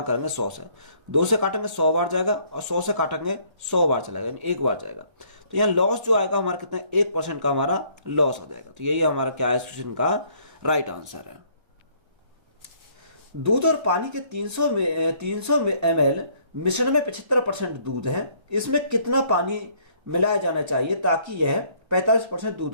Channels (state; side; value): late; left; 1.3 ms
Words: करेंगे 100 से। 2 से काटेंगे 100 बार जाएगा और 100 से काटेंगे 100 बार चलेगा, यानी 1 बार जाएगा। तो यहाँ लॉस जो आएगा हमारा कितना, 1% का हमारा लॉस हो जाएगा। तो यही हमारा क्या है, इस क्वेश्चन का राइट आंसर है। दूध और पानी के 300 ml मिश्रण में 75% दूध है, इसमें कितना पानी मिलाया जाना चाहिए ताकि यह 45% दूध